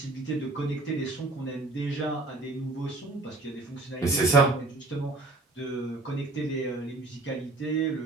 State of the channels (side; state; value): left; quieter; 3.0 dB